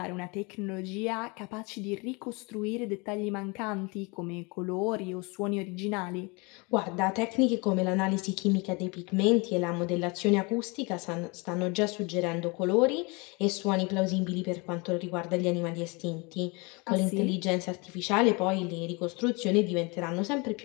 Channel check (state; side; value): quieter; right; 28.4 dB